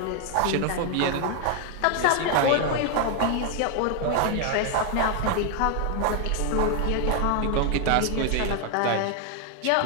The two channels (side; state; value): both; different; correlation 0.01